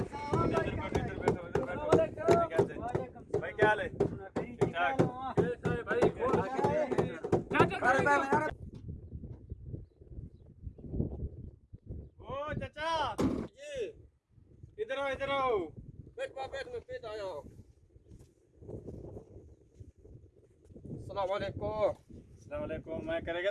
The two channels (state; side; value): identical; both; correlation 1.00